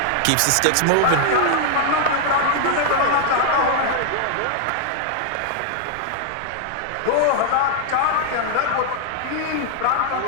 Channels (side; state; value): both; different; correlation 0.00